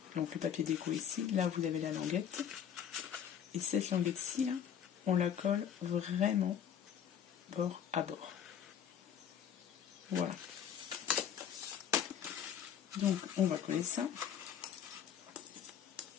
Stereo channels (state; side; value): quieter; right; 8.8 dB